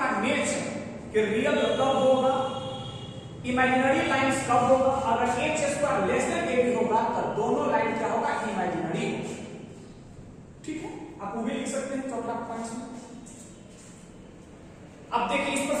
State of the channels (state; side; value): identical; both; correlation 1.00